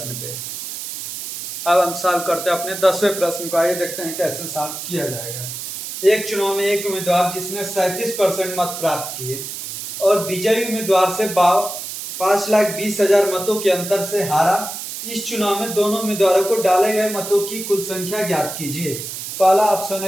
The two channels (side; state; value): right; noise; hiss, 7 dB below the sound